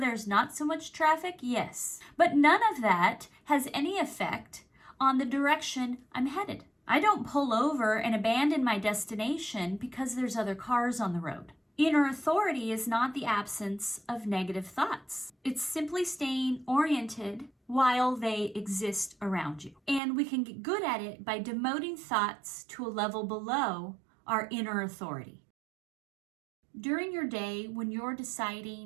not so much traffic? Yes. But none of that has any effect on the direction I'm headed. I don't pull over and abandon my destination because there's other cars on the road. Inner authority is not the absence of negative thoughts. It's simply staying oriented while they exist around you. And we can get good at it by demoting thoughts to a level below our inner authority. During your day, when you're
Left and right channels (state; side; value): drops out; left; at 20.0 s